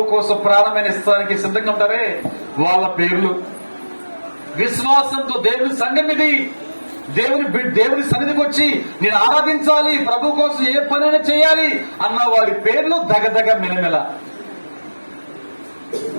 కోసం ప్రాణమైన ఇస్తానికి సిద్ధంగా ఉంటారే వాళ్ళ పేర్లు. విశ్వాసంతో దేవుని సంఘం ఇది. దేవుని సన్నిధికి వచ్చి నేను ఆరాధించాలి, ప్రభు కోసం ఏ పనైనా చేయాలి అన్న వారి పేర్లు దగదగ మెలమెల.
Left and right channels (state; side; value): inverted; both; correlation -1.00